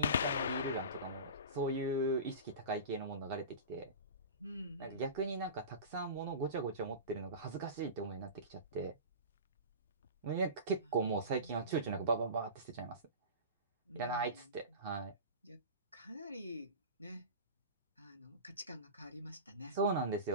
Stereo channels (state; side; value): inverted; both; correlation -0.31